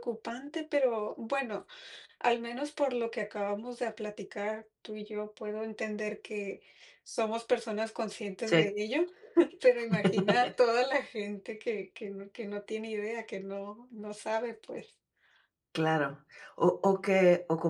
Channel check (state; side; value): identical; both; correlation 1.00